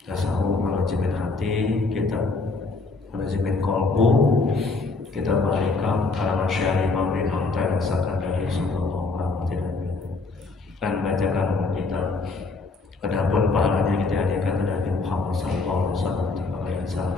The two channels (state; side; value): quieter; right; 3.7 dB